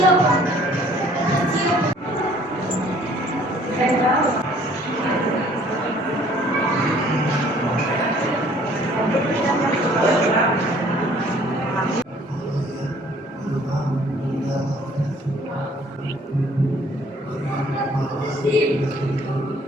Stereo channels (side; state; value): both; normal; correlation 0.57